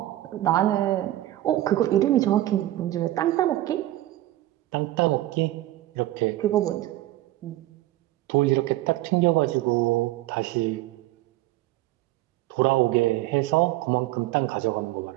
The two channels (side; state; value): left; quieter; 15.6 dB